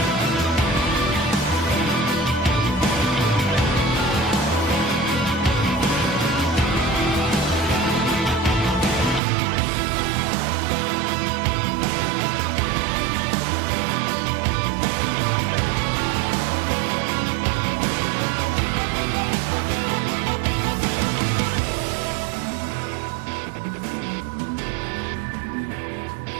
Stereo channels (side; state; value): left; drops out; at 9.2 s